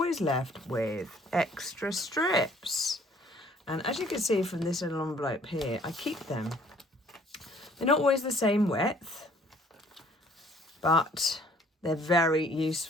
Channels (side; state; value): both; normal; correlation 0.58